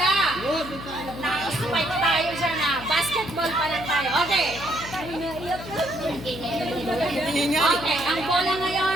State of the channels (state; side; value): noise; left; hum, 12 dB below the sound